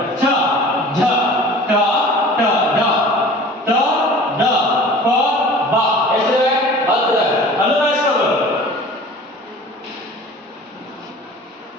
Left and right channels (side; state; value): both; normal; correlation 0.43